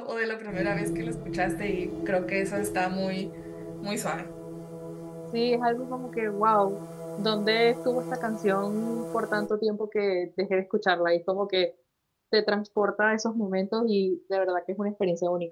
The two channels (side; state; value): both; identical; correlation 1.00